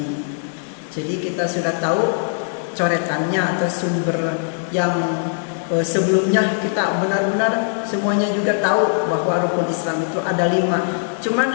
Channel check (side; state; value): right; silent; digital silence